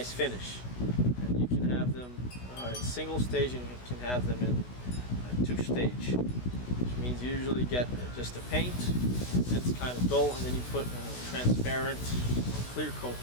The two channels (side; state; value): right; late; 16 ms